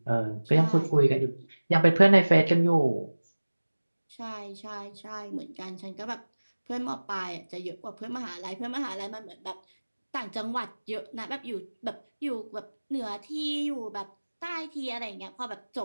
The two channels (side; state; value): both; inverted; correlation -1.00